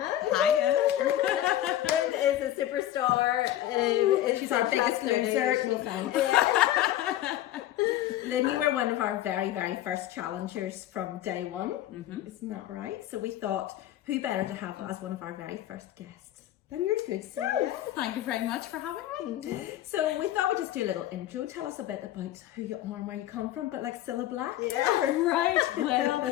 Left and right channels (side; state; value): right; quieter; 13.2 dB